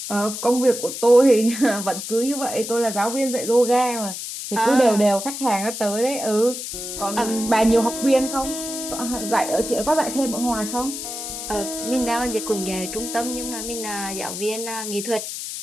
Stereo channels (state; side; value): noise; left; hiss, 7 dB below the sound